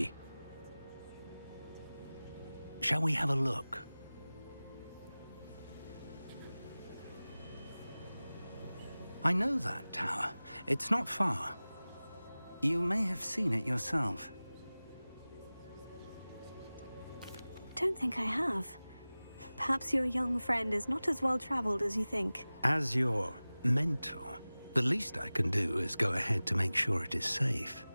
Shall we have a look? I know that tower. It's not far. You may have seen it yourself. Don't think I have. Perhaps your young friend is not as well traveled as you think. As your mentor, the least I can do is go ahead to make sure it is safe.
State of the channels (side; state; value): both; inverted; correlation -0.98